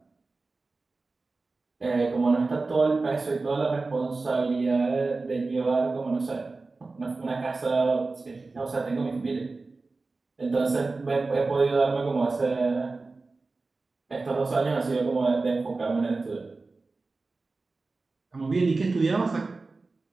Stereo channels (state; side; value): quieter; left; 3.7 dB